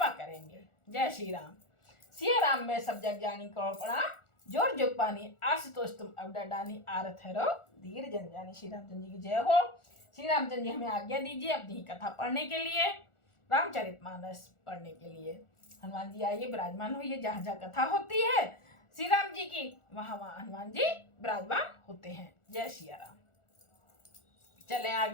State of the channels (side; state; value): right; late; 1.4 ms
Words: करेंगे। जय श्री राम। सिया राम में सब जग जानी करो प्रणाम, जोर जोग पानी आशुतोष तुम अब डानी आरत है धीर जन जानी। श्री रामचंद्र जी की जय हो। श्री रामचंद्र जी हमें आज्ञा दीजिए अपनी ही कथा पढ़ने के लिए, रामचरितमानस पढ़ने के लिए। हनुमान जी आइए, विराजमान होइए। जहाँ जहाँ कथा होती है श्री राम जी की, वहां वहां हनुमान जी विराजमान होते हैं। जय श्री राम। चले